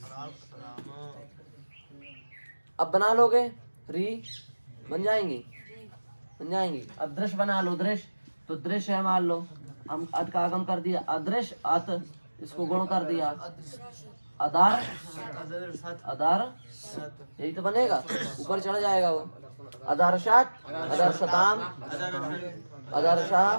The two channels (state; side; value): inverted; both; correlation -1.00